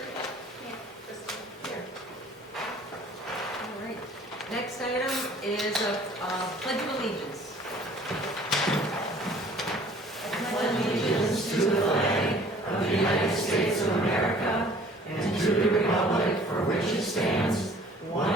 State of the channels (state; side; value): normal; both; correlation 0.52